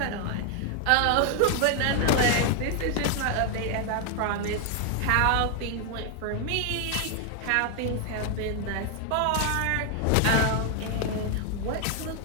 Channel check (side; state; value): both; different; correlation 0.00